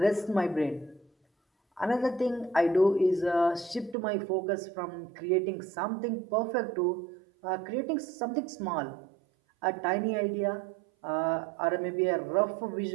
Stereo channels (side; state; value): left; drops out; at 4.0 s